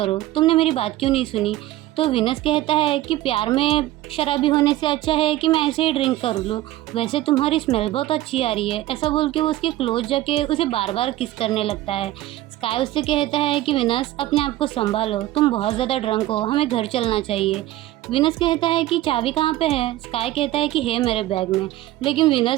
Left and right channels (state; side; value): quieter; left; 15.4 dB